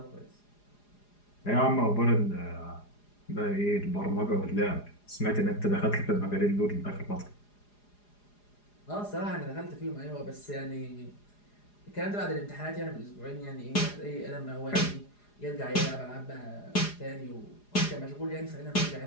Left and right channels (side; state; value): right; late; 4.9 ms